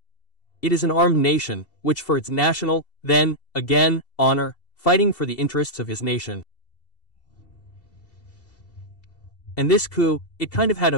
It is an armed nation, which for its national, then, again, honor, fighting for the interests of his nation. And this coup, it kind of had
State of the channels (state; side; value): late; right; 2.7 ms